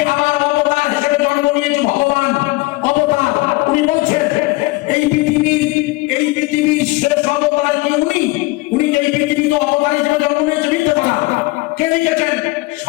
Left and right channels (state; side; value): quieter; right; 22.3 dB